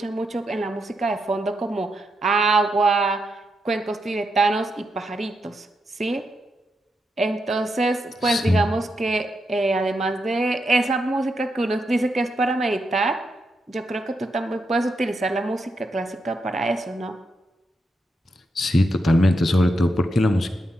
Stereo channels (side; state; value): both; normal; correlation 0.83